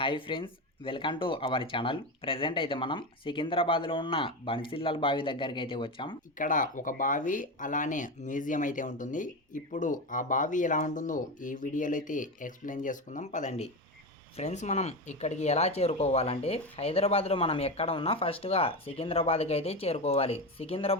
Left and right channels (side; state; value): both; normal; correlation 0.18